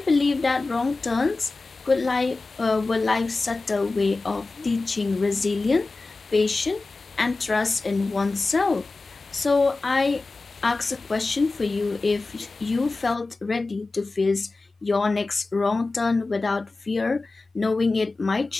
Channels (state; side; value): quieter; right; 3.5 dB